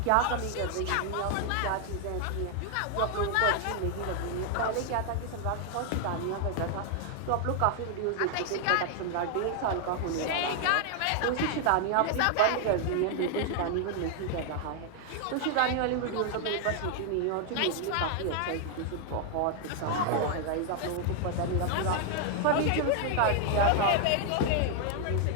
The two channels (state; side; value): different; both; correlation 0.00